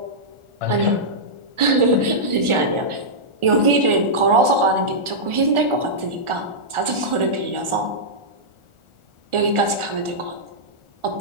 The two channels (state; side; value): late; left; 1.4 ms